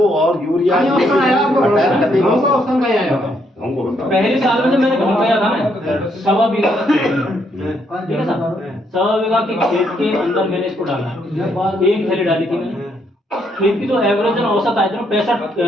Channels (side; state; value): both; normal; correlation 0.74